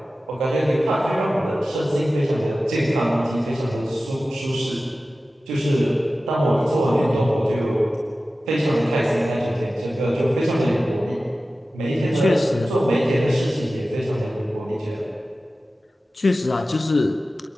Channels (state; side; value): normal; both; correlation 0.95